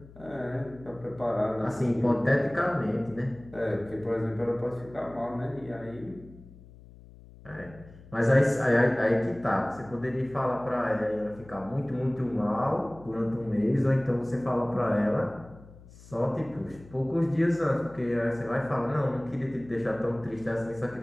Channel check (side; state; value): left; noise; hum, 21 dB below the sound